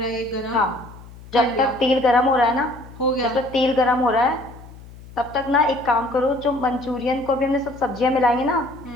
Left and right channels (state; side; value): noise; left; hum, 18 dB below the sound